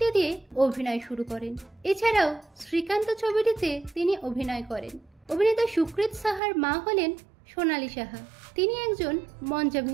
দিয়ে অভিনয় শুরু করেন। এছাড়াও শ্রীকান্ত ছবিটিতে তিনি অভিনয় করেন। অভিনেতা সুকৃত সাহার মা হলেন সোনালী সাহা। তিনি একজন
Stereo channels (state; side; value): drops out; left; at 6.4 s